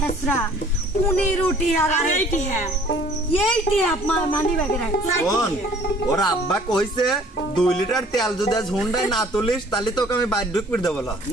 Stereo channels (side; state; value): both; normal; correlation 0.54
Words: 15 টিয়া আর এইটি আপনার মানি ব্যাগে রাখছে। কোন ওরা আব্বা কইছে 2 লিটার তেল যদি আজ হুন্ডাই না তুলিস তাহলে তোকে আমি বাইর ঢুক করে দেব।